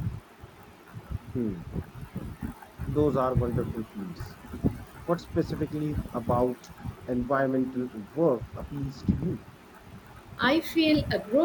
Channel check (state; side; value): identical; both; correlation 1.00